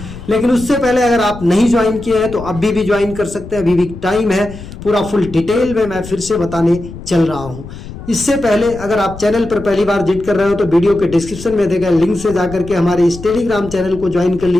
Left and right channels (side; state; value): left; noise; rumble, 13 dB below the sound